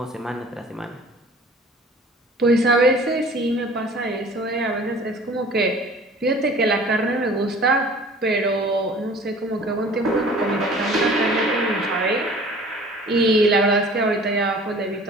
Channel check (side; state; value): both; normal; correlation 0.47